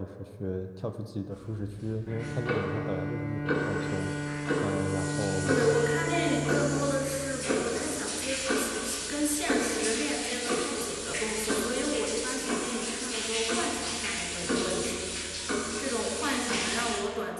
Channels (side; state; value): both; identical; correlation 1.00